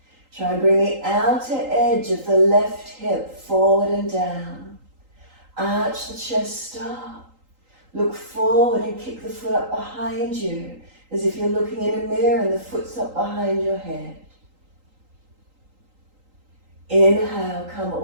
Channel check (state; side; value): late; left; 3.8 ms